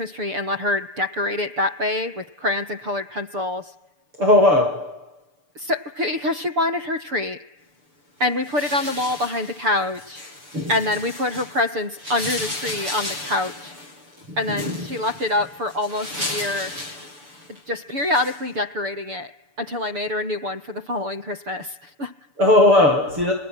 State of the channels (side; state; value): left; late; 6.8 ms